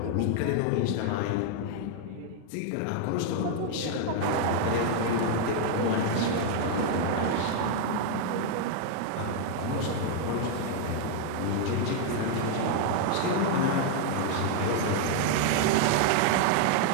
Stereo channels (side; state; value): both; different; correlation 0.00